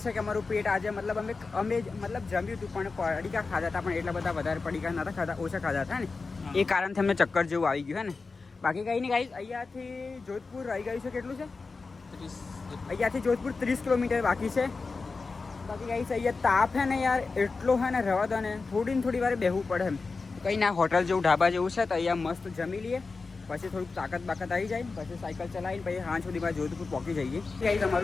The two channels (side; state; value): right; quieter; 4.2 dB